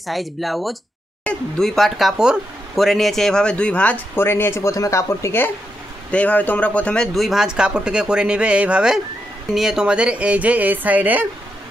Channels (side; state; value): both; normal; correlation 0.83